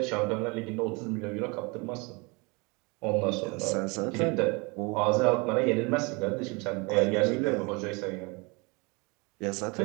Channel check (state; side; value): quieter; left; 28.7 dB